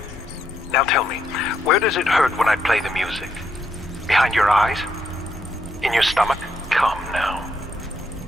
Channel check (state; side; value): normal; both; correlation 0.77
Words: Now tell me, where does it hurt when I play the music? Behind your eyes? In your stomach? Come now.